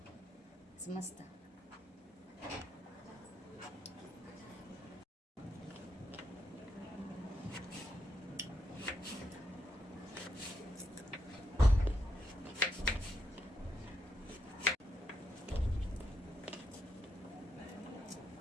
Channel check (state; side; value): normal; both; correlation 0.80